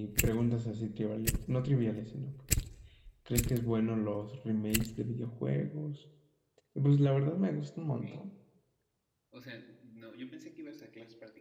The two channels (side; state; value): both; identical; correlation 1.00